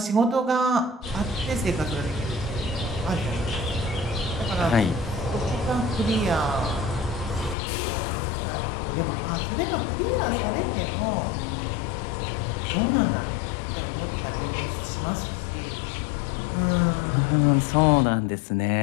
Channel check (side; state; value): right; drops out; at 7.6 s